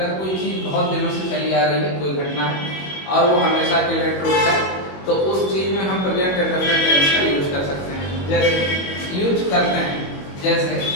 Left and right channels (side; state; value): right; late; 21 ms